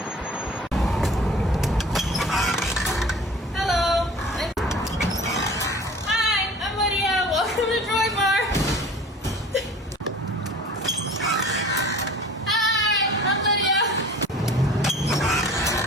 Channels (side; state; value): both; normal; correlation 0.44